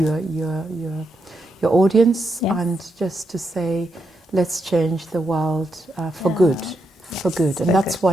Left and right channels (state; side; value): normal; both; correlation 0.82